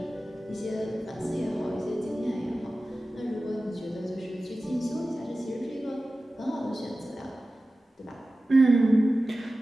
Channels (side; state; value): both; normal; correlation 0.95